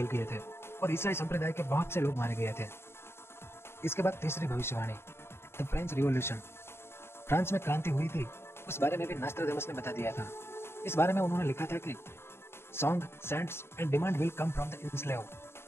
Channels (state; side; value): late; right; 0.12 ms